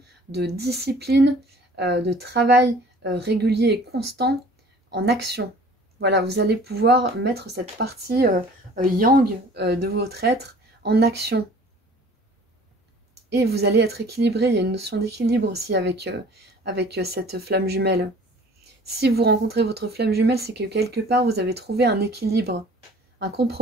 de discipline, de travail régulier et constant en action. Voilà, vous allez pouvoir mettre cette partie yang de votre être en action. Et vous allez être équilibré, il y a une notion d'équilibre aussi avec cette flamme jumelle. Si vous rencontrez votre flamme jumelle, c'est que quelque part, vous avez trouvé un équilibre, un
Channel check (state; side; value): normal; both; correlation 0.49